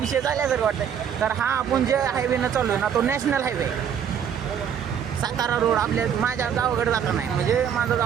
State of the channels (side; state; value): left; quieter; 8.3 dB